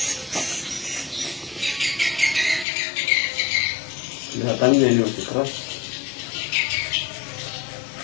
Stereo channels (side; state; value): right; drops out; at 2.7 s